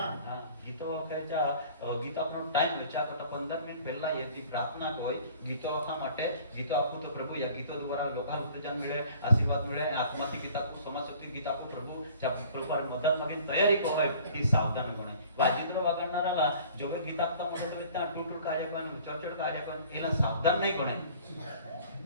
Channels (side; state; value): both; inverted; correlation -0.50